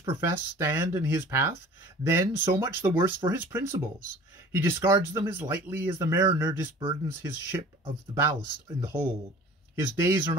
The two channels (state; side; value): normal; both; correlation 0.45